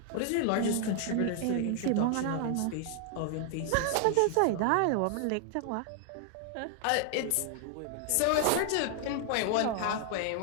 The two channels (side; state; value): both; different; correlation 0.00